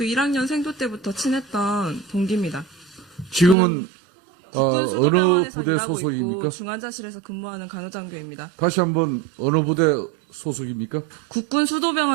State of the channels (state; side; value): drops out; left; at 3.6 s